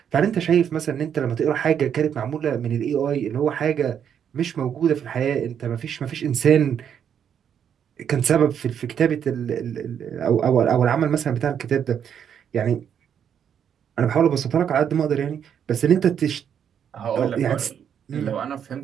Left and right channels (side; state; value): left; quieter; 8.4 dB